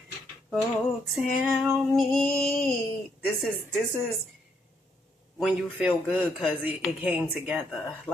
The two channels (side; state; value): both; normal; correlation 0.75